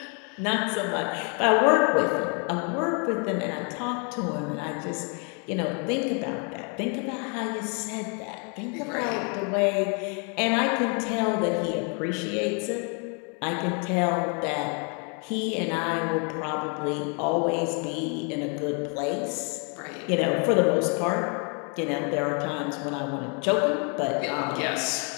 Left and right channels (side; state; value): right; quieter; 37.1 dB